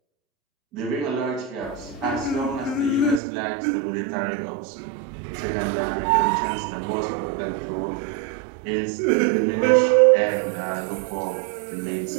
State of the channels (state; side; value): drops out; left; at 3.2 s